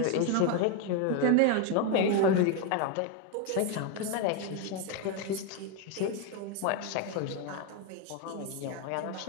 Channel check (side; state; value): both; different; correlation 0.01